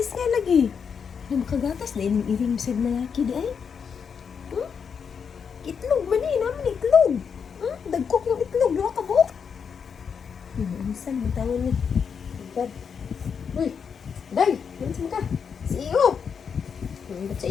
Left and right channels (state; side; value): quieter; right; 6.6 dB